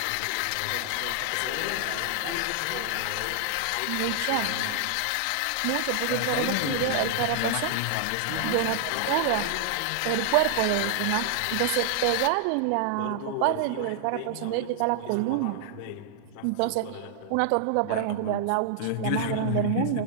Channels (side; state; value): both; different; correlation -0.01